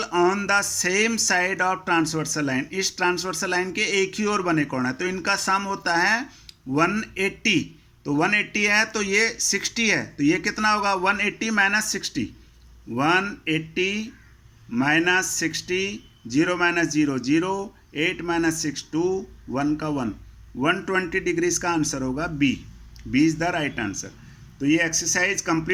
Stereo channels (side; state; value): both; identical; correlation 1.00